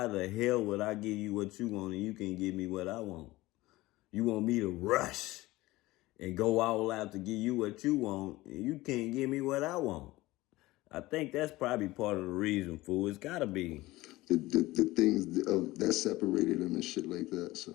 the hell would I give you what you want and you can't give me what I want? You want me to rush and go all out to give you what you want and you can't give me what I want. I think that's probably part of the reason, fool. It's gotta be. The things that separated them and shit like that. So,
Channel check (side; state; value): right; quieter; 18.9 dB